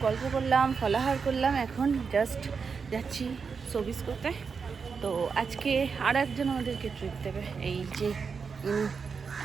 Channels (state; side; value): quieter; left; 5.5 dB